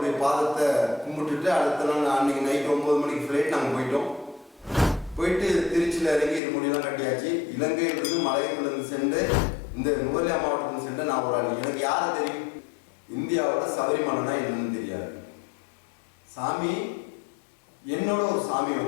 பாதத்தை கும்பிட்டுட்டு அடுத்த நாள் அன்னைக்கு நைட் 9 மணிக்கு ஃப்ளைட் நாங்கள் போயிட்டோம். போயிட்டு திருச்சியில் இறங்கி முடியெல்லாம் கட்டியாச்சு. இலங்கையிலிருந்து மலையத்திலிருந்து சென்று இந்த நுவல்லையா மாவட்டத்தில் சென்று நான் ஒரு ஆள். எனக்கு யாரை தெரியும்? இந்தியாவோட சபரிமலைனா என்னன்னு தெரியாது. சாமி என்னோட ஒரு சாமி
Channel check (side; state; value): right; drops out; at 6.4 s